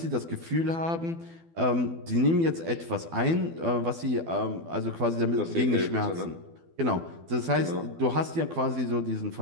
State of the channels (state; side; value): late; left; 12 ms